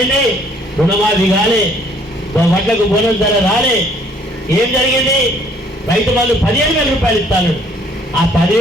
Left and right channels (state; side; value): normal; both; correlation 0.61